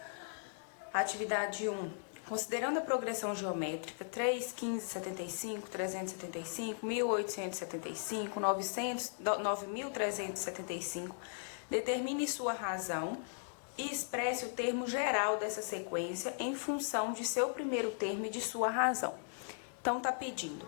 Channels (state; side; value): silent; right; digital silence